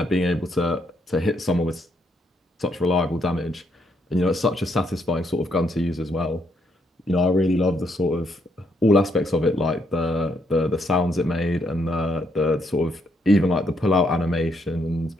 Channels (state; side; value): normal; both; correlation 0.74